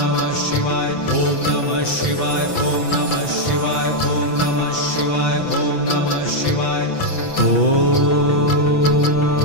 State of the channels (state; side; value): late; right; 6.0 ms